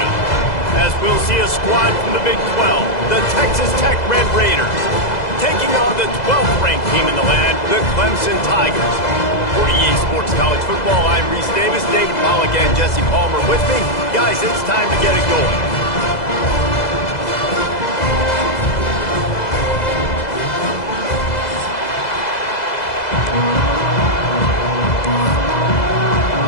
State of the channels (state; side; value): late; right; 2.0 ms